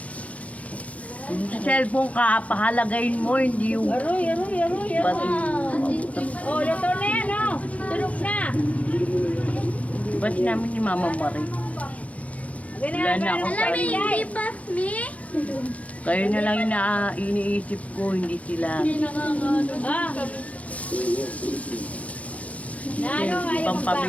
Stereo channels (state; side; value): late; right; 0.067 ms